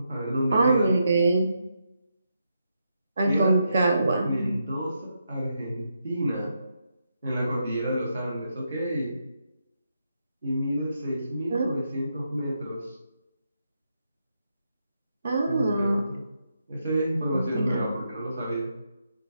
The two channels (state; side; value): inverted; both; correlation -0.82